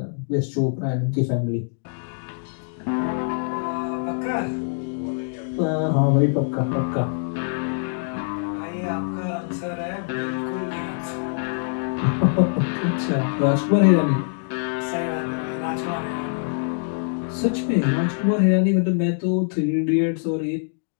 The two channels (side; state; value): right; silent; digital silence